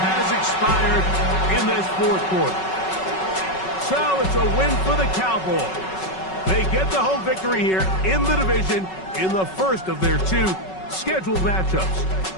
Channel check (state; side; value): late; right; 5.3 ms